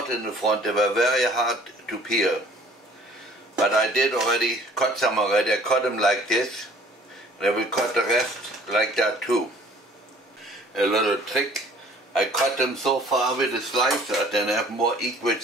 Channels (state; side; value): normal; both; correlation 0.53